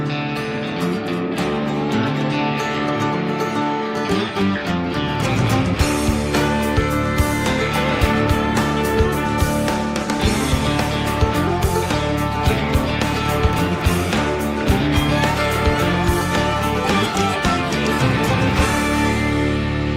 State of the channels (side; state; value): both; identical; correlation 1.00